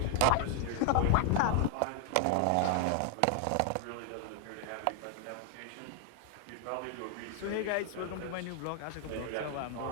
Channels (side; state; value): both; different; correlation 0.00